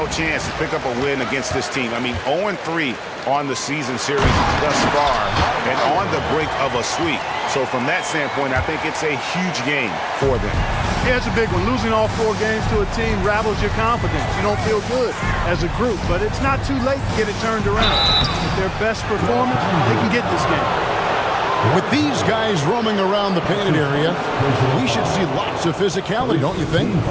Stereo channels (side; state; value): both; identical; correlation 1.00